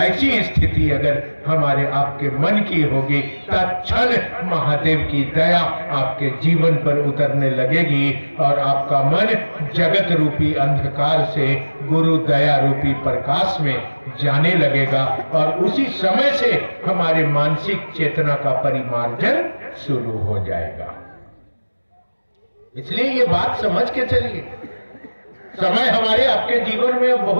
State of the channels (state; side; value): inverted; both; correlation -1.00